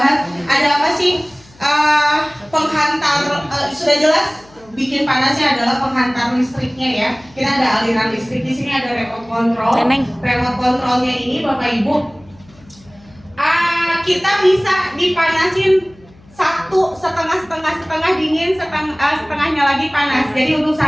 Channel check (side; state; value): left; noise; hum, 27 dB below the sound